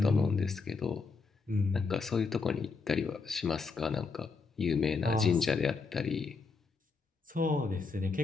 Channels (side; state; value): right; quieter; 4.6 dB